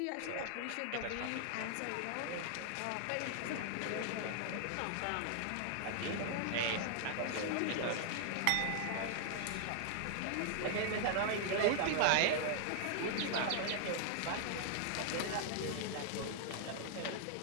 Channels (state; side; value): different; both; correlation 0.00